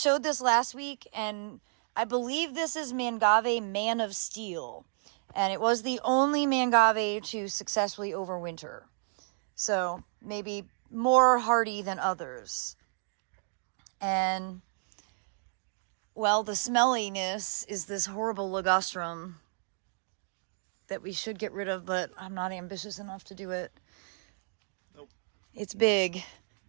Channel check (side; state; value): left; silent; digital silence